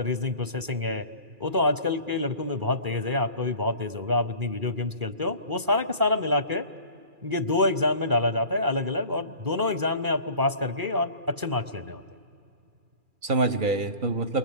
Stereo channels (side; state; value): left; late; 2.4 ms